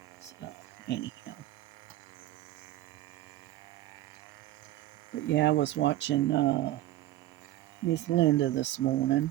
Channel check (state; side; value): quieter; left; 14.7 dB